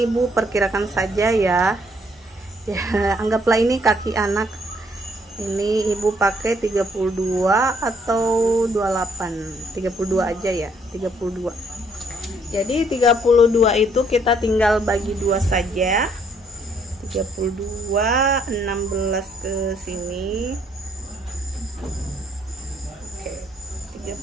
Ibu perkirakan saja ya. Ya, anggaplah ini kaki anak. Ini Ibu pakai 32 atau 28. 32 aja ya, 32. Jadi 32 itu kita tinggal bagi 2 saja. 32, 16 ke sini. Oke,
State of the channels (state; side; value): normal; both; correlation 0.67